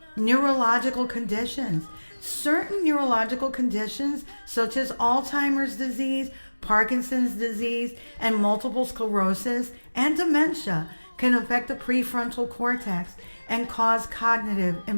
Neurological conditions. Certain neurological conditions, such as Alzheimer's disease, Parkinson's disease, and multiple sclerosis and dementia, can affect the prefrontal cortex and cause cognitive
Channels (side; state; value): both; inverted; correlation -1.00